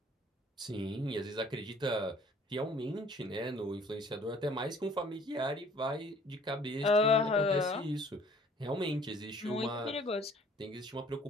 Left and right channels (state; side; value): normal; both; correlation 0.55